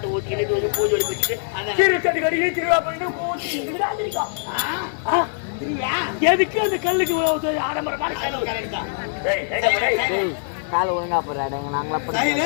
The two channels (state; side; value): silent; right; digital silence